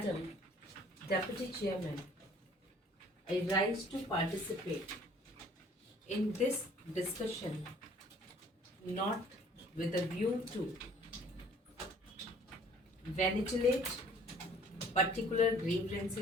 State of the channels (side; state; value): both; normal; correlation 0.55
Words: Deputy Chairman, I rise to participate in this discussion not with a view to ventilate particular